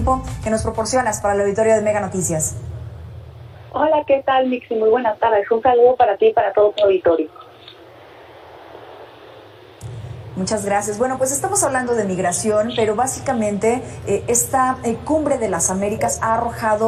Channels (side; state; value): both; identical; correlation 1.00